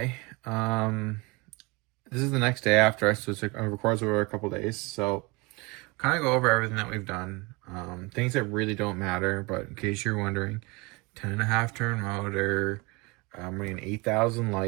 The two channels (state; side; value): quieter; left; 26.3 dB